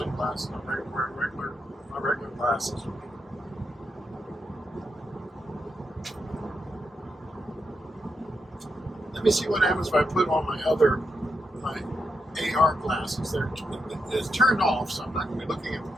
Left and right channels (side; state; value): both; normal; correlation 0.84